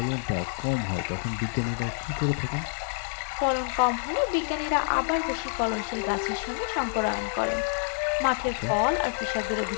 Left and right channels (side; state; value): right; silent; digital silence